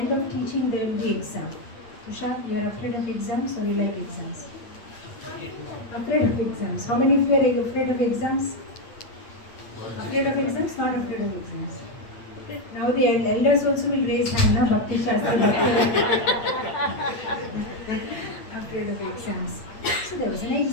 of teaching, there will be exam. Tushar, you are afraid of exams or you like exams? Afraid of exams. How many of you are afraid of exams? Afraid of exams? Not afraid of exams. Now the elders also will raise hand, na? Bhakti Shastri. Afraid of exams. So there was an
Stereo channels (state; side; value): late; right; 9.0 ms